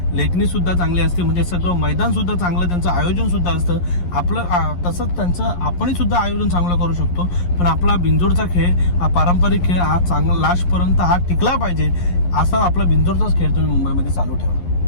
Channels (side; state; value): right; late; 11 ms